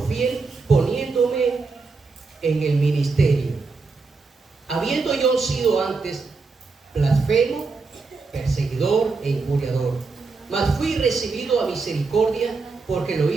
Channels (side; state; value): left; quieter; 4.2 dB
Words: fiel poniéndome en el ministerio, habiendo yo sido antes blasfemo, perseguidor e injuriador, mas fui recibido a misericordia, porque lo